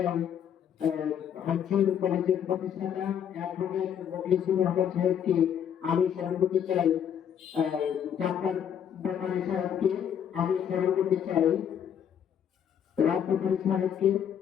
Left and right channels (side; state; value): right; quieter; 8.8 dB